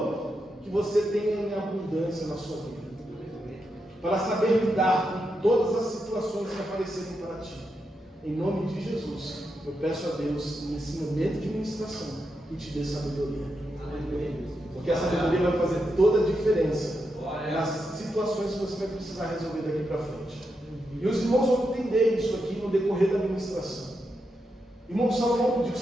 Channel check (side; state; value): both; normal; correlation 0.85